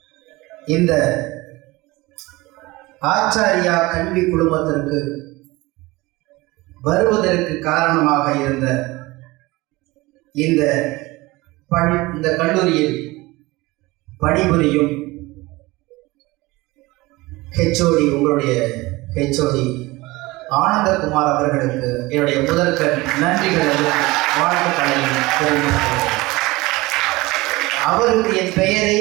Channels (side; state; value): left; quieter; 21.2 dB